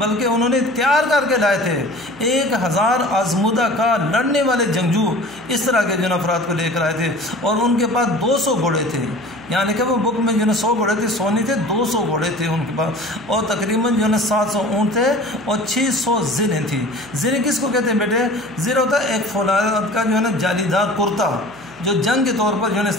उन्होंने तैयार करके लाए थे 1000 आजमुदा का लड़ने वाले जंगजू, इस तरह के जो है अफराद को लेकर आए थे। और उनके पास 200 घोड़े थे, यानी कि वो बुक में जो है 100 घोड़े थे, 100 नहीं थे, 200 घोड़े थे उनके पास, और तकरीबन जो है 700 ऊँट थे और 600 ज़िरें थी। ज़िरें किसको कहते हैं बेटे? ज़िर होता है एक फौलाद का जो है ना जालीदार कुर्ता, जो जंग के तौर पर जो है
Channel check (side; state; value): right; noise; hum, 25 dB below the sound